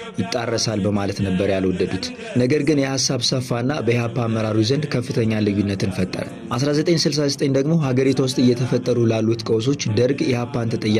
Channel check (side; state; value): both; identical; correlation 1.00